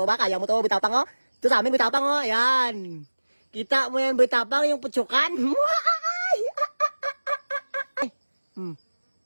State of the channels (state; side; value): inverted; both; correlation -1.00